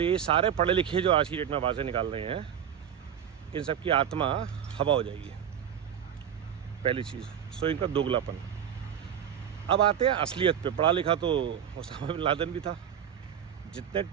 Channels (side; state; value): left; quieter; 9.0 dB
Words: सारे पढ़े लिखे जो आज की डेट में आवाज़ें निकाल रहे हैं, इन सब की आत्मा हवा हो जाएगी। पहली चीज़, सो इनका दोगलापन। अब आते हैं असलियत पे। पढ़ा लिखा तो ओसामा बिन लादेन भी था। जितने